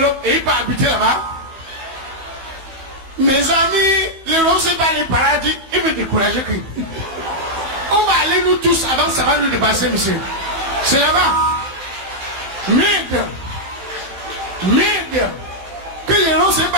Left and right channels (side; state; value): left; late; 15 ms